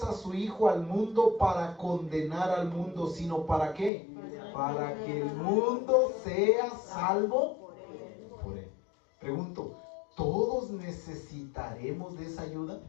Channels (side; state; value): right; drops out; at 3.9 s